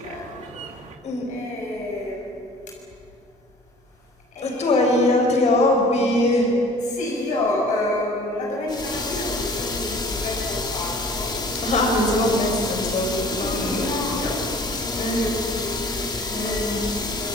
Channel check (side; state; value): both; normal; correlation 0.48